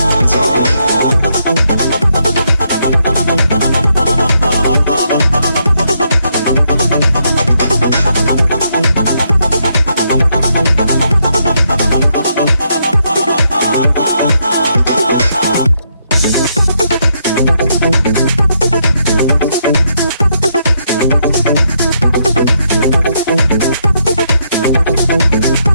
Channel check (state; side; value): inverted; both; correlation -0.77